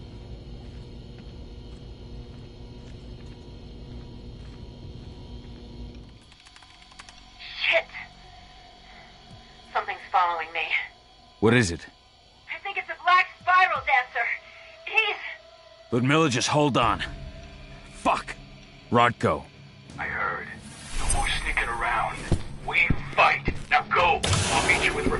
Shit! Something's following me. What is it? I think it's a black spiral dancer. He's... Ludmilla, just hold on. Fuck. Rodko. I heard. No more sneaking around. We fight. Now go. I'll meet you with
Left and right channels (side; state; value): both; identical; correlation 1.00